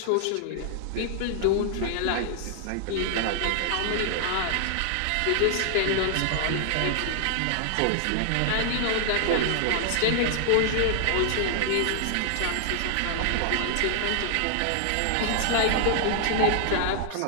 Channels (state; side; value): different; both; correlation 0.00